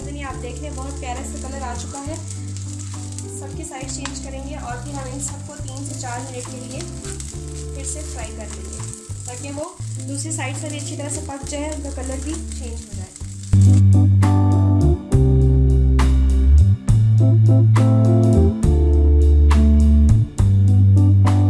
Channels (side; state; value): both; identical; correlation 1.00